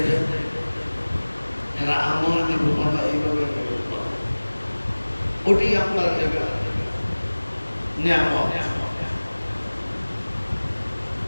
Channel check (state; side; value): inverted; both; correlation -1.00